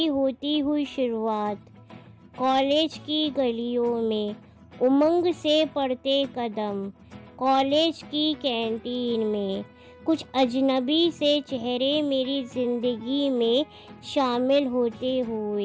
होती हुई शुरुआत, कॉलेज की गलियों में उमंग से पड़ते कदम, कॉलेज की कैंटीन में कुछ अजनबी से चेहरे मेरी ज़िंदगी में शामिल होते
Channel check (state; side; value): identical; both; correlation 1.00